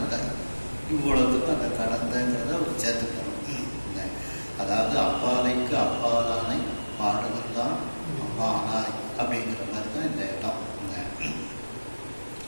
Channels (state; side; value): inverted; both; correlation -1.00